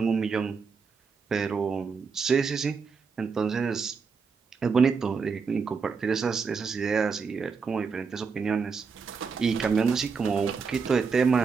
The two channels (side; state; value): left; quieter; 5.4 dB